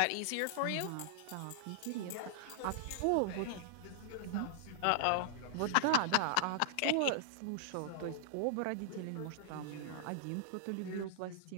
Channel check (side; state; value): both; different; correlation -0.01